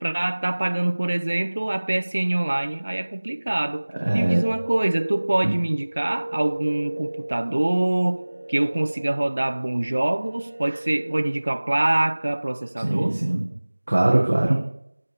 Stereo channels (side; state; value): both; inverted; correlation -1.00